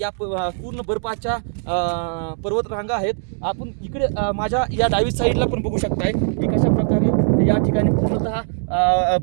पूर्ण बर्फाच्या पर्वतरांगा आहेत. आपण इकडे माझ्या या डावी साईडला पण बघू शकताय की कशा प्रकारे या ठिकाणी पूर्णतः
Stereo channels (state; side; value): silent; left; digital silence